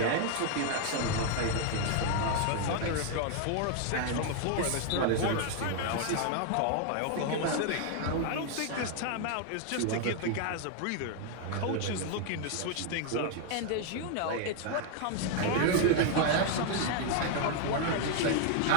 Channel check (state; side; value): different; both; correlation 0.00